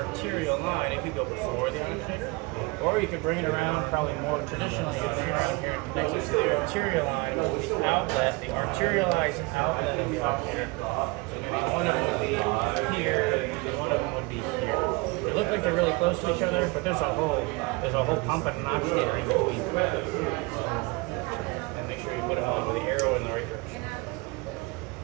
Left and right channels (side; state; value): left; quieter; 25.7 dB